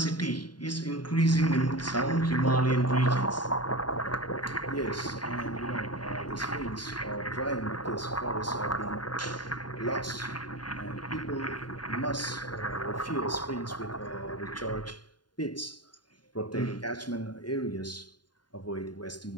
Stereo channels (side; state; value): right; late; 0.70 ms